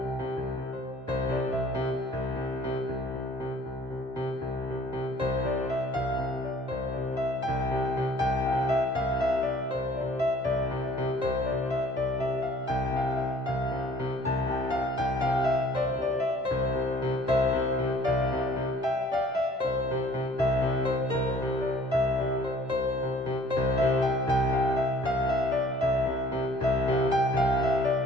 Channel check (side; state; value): both; normal; correlation 0.54